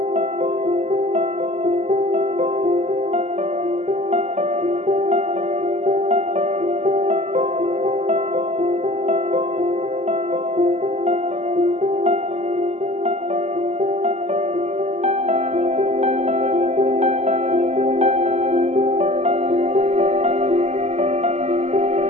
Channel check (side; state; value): left; late; 0.33 ms